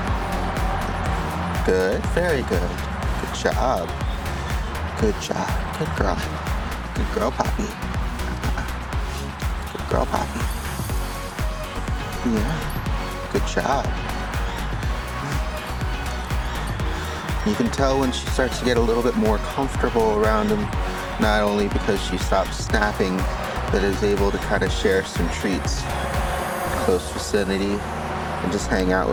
Good. Very good. Good job. Good job. Good girl. Good girl, Poppy. Good girl, Poppy. Yeah. Good job. You can tell when she starts to get a little bit more comfortable around him, not only because she stops snapping, but is able to kind of share some treats in close vicinity and just hang out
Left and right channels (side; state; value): both; identical; correlation 1.00